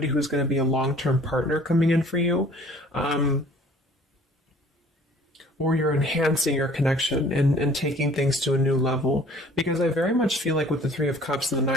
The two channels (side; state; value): both; normal; correlation 0.53